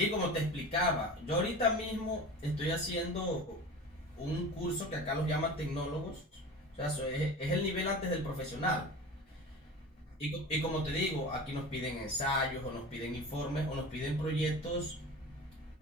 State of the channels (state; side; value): normal; both; correlation 0.34